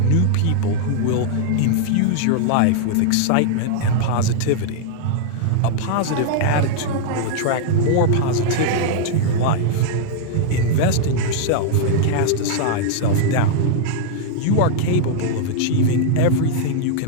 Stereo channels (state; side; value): different; both; correlation -0.01